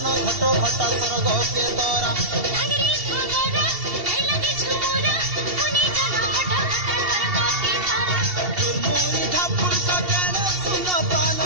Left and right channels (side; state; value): left; late; 2.7 ms